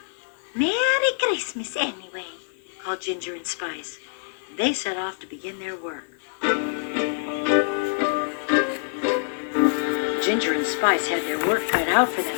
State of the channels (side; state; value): right; silent; 62 dB below the other